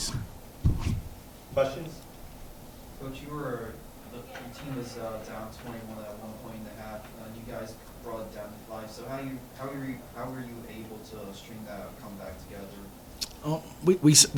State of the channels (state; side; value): identical; both; correlation 1.00